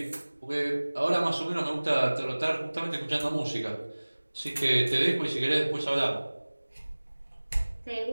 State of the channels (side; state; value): both; inverted; correlation -1.00